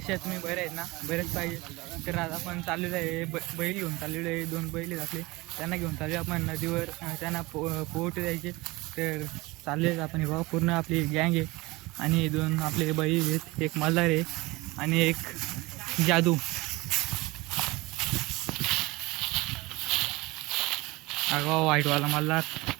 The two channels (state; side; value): quieter; left; 22.2 dB